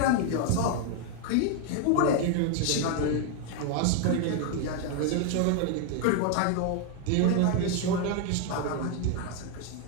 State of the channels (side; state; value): both; different; correlation 0.01